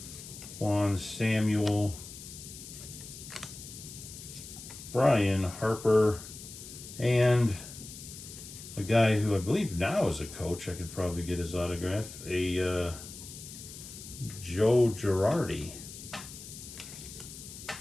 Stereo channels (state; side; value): noise; left; hiss, 13 dB below the sound